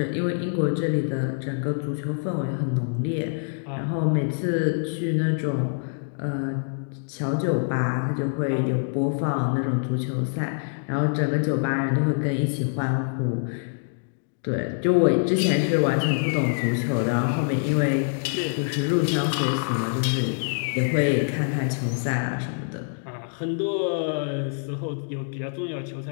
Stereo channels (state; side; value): silent; right; digital silence